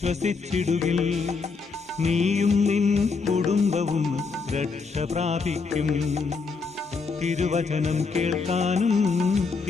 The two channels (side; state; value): right; quieter; 4.6 dB